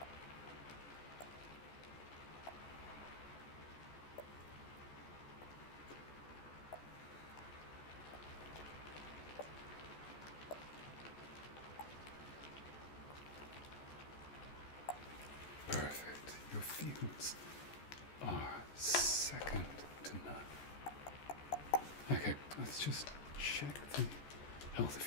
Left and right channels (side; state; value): right; late; 14 ms